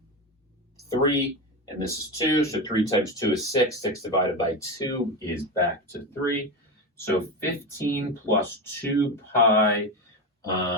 3, and this is 2, so 3 times 2 is 6. 6 divided by 2 is back to 3. So 15 plus 2 pi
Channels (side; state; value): both; normal; correlation 0.17